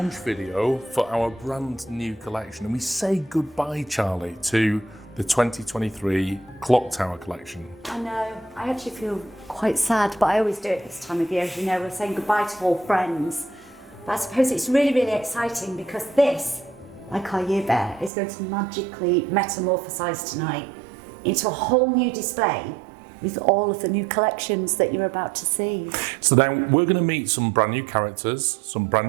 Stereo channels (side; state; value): left; drops out; at 18.1 s